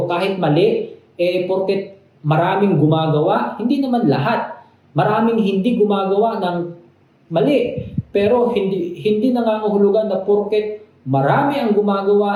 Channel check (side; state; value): both; identical; correlation 1.00